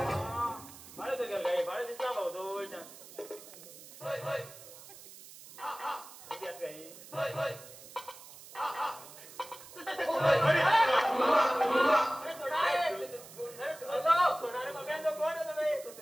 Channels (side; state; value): right; noise; hiss, 17 dB below the sound